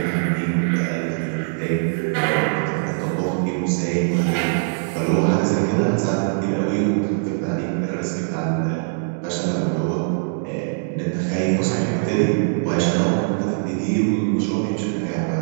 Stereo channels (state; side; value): silent; left; digital silence